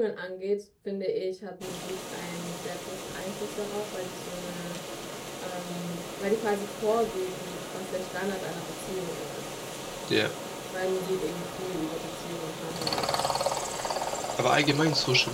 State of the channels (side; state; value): both; identical; correlation 1.00